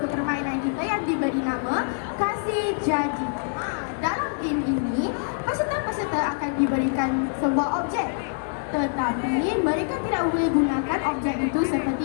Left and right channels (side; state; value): right; silent; digital silence